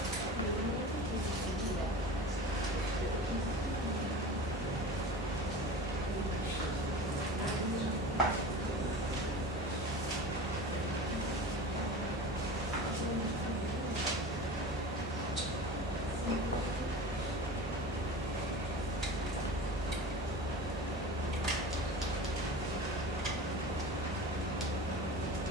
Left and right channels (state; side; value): normal; both; correlation 0.33